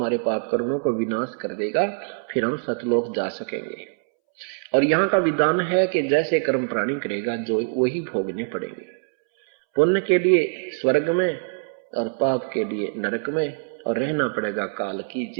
पाप कर्मों को विनाश कर देगा, फिर हम सतलोक जा सकेंगे। और यहाँ का विधान है कि जैसे कर्म प्राणी करेगा जो वही भोगने पड़ेंगे। पुण्य के लिए स्वर्ग में और पाप के लिए नरक में, और रहना पड़ेगा काल की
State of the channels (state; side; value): silent; left; 63 dB below the other